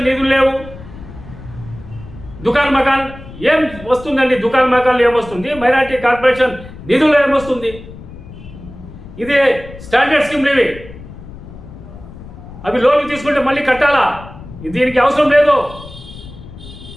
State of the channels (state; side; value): noise; left; rumble, 16 dB below the sound